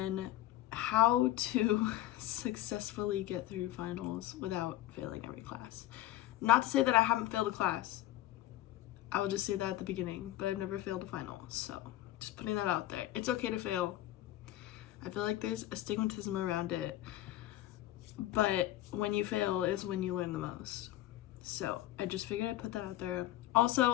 how to successfully get through finals without failing every class. Not to say that I haven't failed a class. I will just say that at the beginning, but I've never failed a final. So just putting that out there. It's okay to fail. I feel like there's a stigmatism around it, but when you fail is when you learn the most. So I just figured I'd put that out there.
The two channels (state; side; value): quieter; right; 14.4 dB